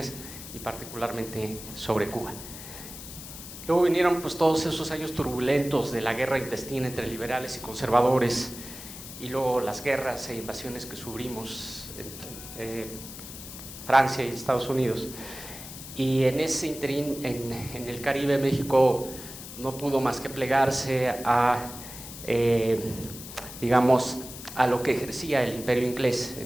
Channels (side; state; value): left; noise; hiss, 12 dB below the sound